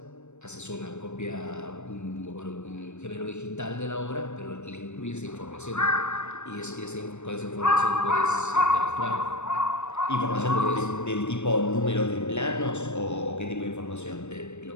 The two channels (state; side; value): late; right; 0.83 ms